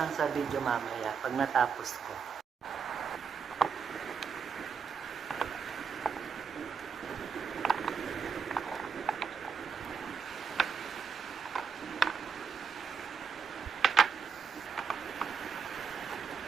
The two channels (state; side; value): quieter; left; 5.9 dB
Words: lang sa video mamaya pag natapos ko.